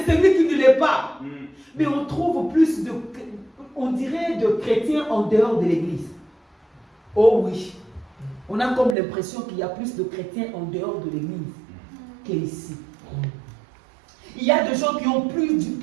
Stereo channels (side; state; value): left; drops out; at 9.0 s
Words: celui qui ne l'est pas. Mais on trouve plus de, on dirait, de chrétiens en dehors de l'église. Oh oui, on a comme l'impression qu'il y a plus de chrétiens en dehors de l'église qu'ici. Il y a des gens qui ont